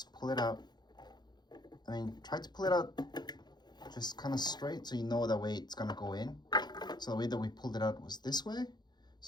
pull it out. I mean, try to pull it out just kind of straight so you know that way it's gonna go in. So the way that we pulled it out was this way.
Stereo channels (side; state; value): right; late; 0.21 ms